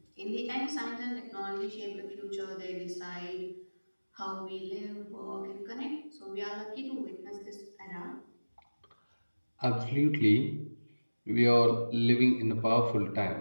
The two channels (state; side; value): inverted; both; correlation -1.00